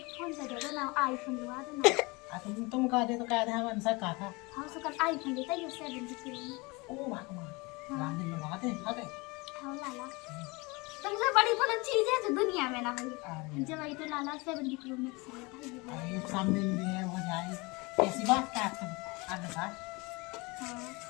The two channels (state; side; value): quieter; right; 25.8 dB